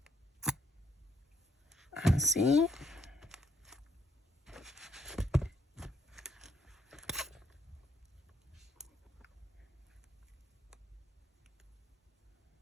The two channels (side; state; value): both; normal; correlation 0.71